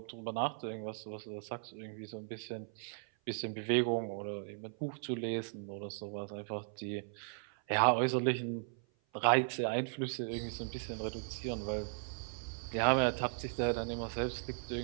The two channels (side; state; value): left; silent; 53 dB below the other